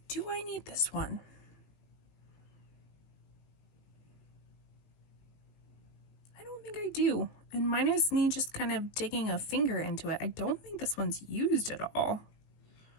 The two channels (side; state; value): right; late; 19 ms